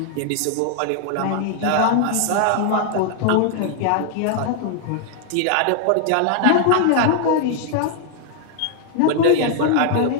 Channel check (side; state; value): both; different; correlation 0.00